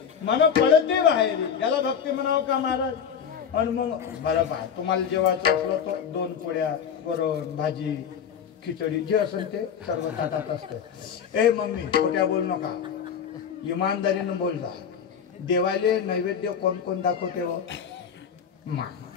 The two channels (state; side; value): quieter; right; 7.6 dB